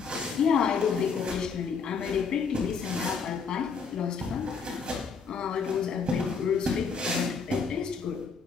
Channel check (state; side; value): quieter; right; 5.5 dB